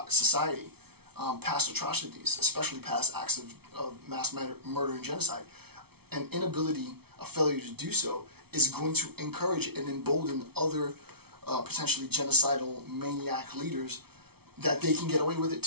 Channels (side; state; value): left; late; 0.96 ms